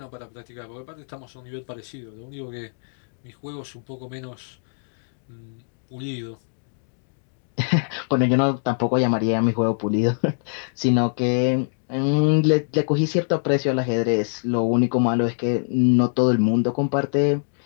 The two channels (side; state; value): right; silent; digital silence